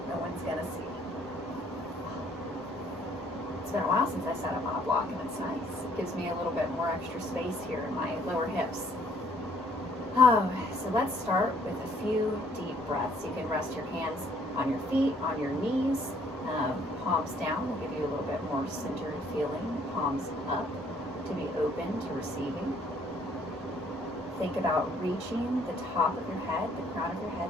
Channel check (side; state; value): both; normal; correlation 0.62